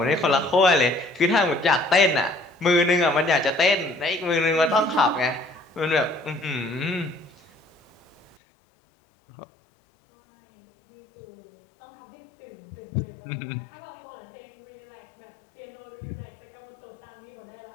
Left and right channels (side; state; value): right; drops out; at 8.3 s